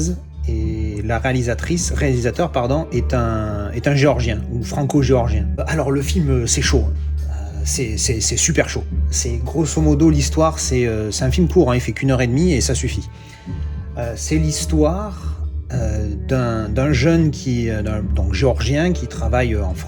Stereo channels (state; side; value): identical; both; correlation 1.00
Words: Et la réalisateur pardon, est un géorgien ou franco-géorgien. Alors le film, c'est chaud, c'est super chaud. C'est grosso modo l'histoire, c'est un film court, hein, il fait qu'1 h 30 et ça suffit. C'est l'histoire d'un jeune donc géorgien qui travaille en